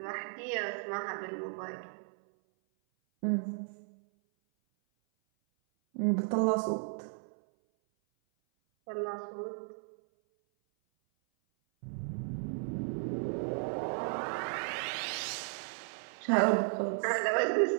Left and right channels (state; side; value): silent; left; 55 dB below the other